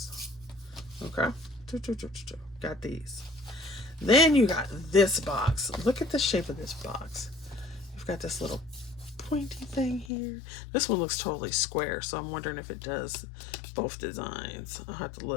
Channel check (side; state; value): right; drops out; at 10.1 s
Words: Okay. Got these. Then you got this box. Look at the shape of this box. You've got this little pointy thing here. This one looks totally square, so I'm wondering if it does both designs. I'll have to